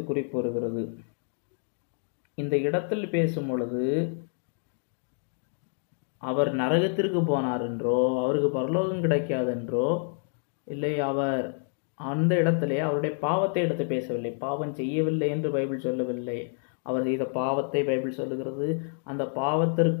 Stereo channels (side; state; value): right; silent; 59 dB below the other